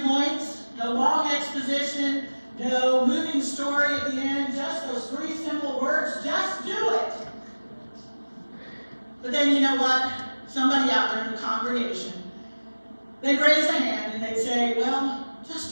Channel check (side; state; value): both; inverted; correlation -1.00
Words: points, no long exposition, no moving story at the end, just those 3 simple words: just do it. But then you know what? Somebody out there in the congregation, they'd raise a hand and they'd say, well,